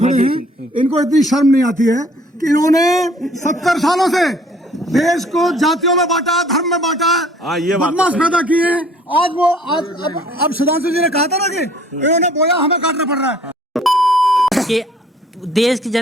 खड़े हैं, इनको इतनी शर्म नहीं आती है कि इन्होंने 70 सालों से देश को जातियों में बांटा, धर्म में बांटा, बदमाश पैदा किए। आज वो अब सुधांशु जी ने कहा था ना कि इन्होंने बोया हमें काटना पड़ रहा है। कि देश की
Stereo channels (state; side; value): normal; both; correlation 0.57